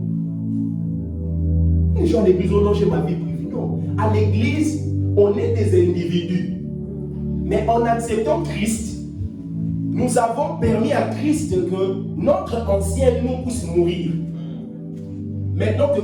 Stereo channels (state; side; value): identical; both; correlation 1.00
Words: Les gens à l'église, oh non, j'ai ma vie privée. Non. À l'église, on est des individus. Mais en acceptant Christ, nous avons permis à Christ que notre ancien nous puisse mourir. Maintenant que